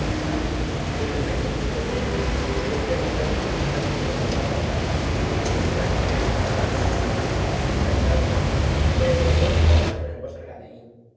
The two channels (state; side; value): identical; both; correlation 1.00